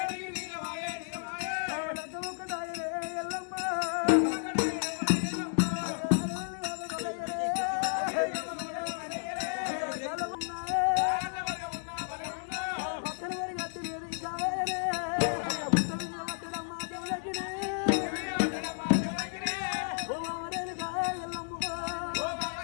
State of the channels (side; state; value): right; silent; digital silence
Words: లగ్గముక్కడాయే ఎల్లమ్మ పక్కన వరి గట్టి లేదు ఇంకా వేరే పుట్ట మీద పట్టడమ్మా జమలకినే ఓ మామరేనుకా ఎల్లమ్మ